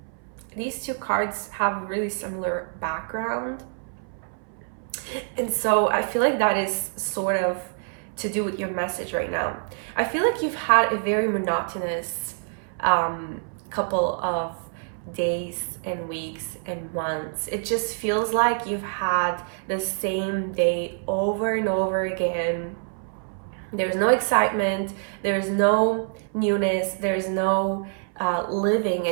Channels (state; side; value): silent; left; 60 dB below the other